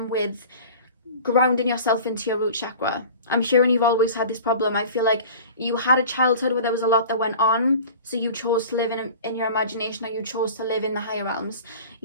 with grounding yourself into your root chakra. I'm hearing you've always had this problem. I feel like you had a childhood where there was a lot that went on, so you chose to live in your imagination, or you chose to live in the higher realms.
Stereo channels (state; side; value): inverted; both; correlation -0.40